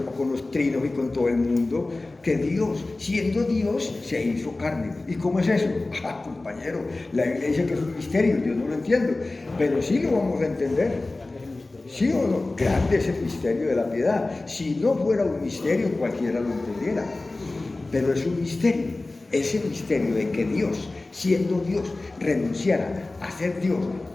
con los trinos y con todo el mundo, que Dios, siendo Dios, se hizo carne. ¿Y cómo es eso? Ah, compañero, la Biblia dice que es un misterio, yo no lo entiendo, pero sí lo vamos a entender. ¿Sí o no? Grande es el misterio de la piedad. Si no fuera un misterio, cualquiera lo entendiera. Pero es un misterio. Ese misterio de que Dios, siendo Dios, renunciara a ser Dios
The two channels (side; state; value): right; quieter; 3.1 dB